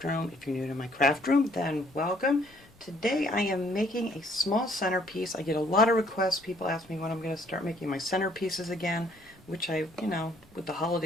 room. If you're new to my craft room, then welcome. Today I am making a small centerpiece. I get a lot of requests. People ask me when I'm going to start making my centerpieces again, which with the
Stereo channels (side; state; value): left; noise; rumble, 29 dB below the sound